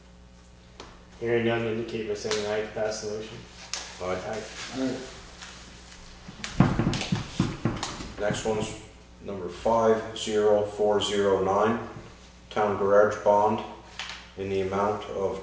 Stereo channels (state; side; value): identical; both; correlation 1.00